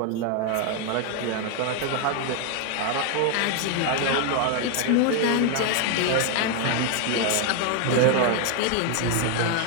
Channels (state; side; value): different; both; correlation 0.01